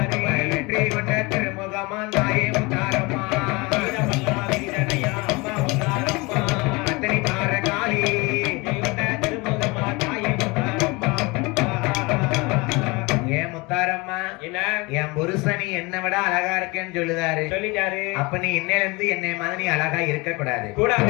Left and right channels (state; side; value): quieter; right; 25.5 dB